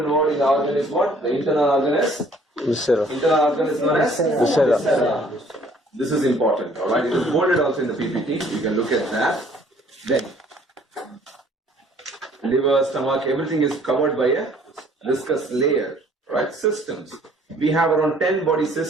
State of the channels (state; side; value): normal; both; correlation 0.58